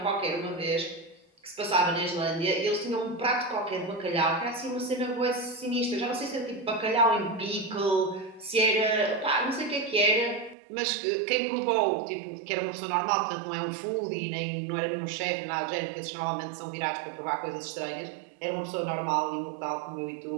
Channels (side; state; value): left; drops out; at 10.6 s